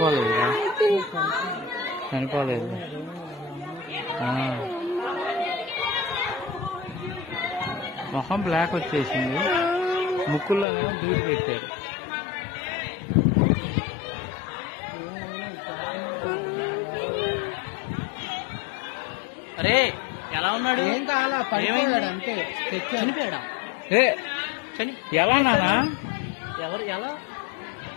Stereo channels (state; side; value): drops out; right; at 10.7 s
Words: చనిపోలేదు మొహం బ్లాక్ వచ్చేసింది ముక్కుల్లోనేమో దూది పెట్టారు అరే ఎలా ఉన్నాడు ఏం కావాలా పడిపోయాడు అంతే చనిపోయాడా ఎలా నానా ఎవరు ఎలా